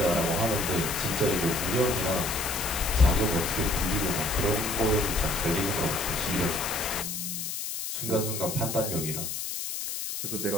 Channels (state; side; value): noise; left; hiss, 4 dB below the sound